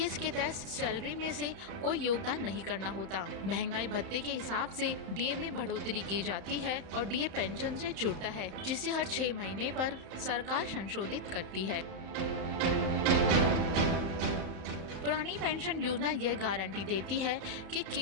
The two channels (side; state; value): left; late; 31 ms